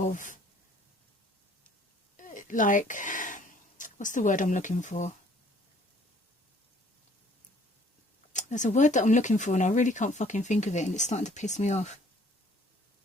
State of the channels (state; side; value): normal; both; correlation 0.58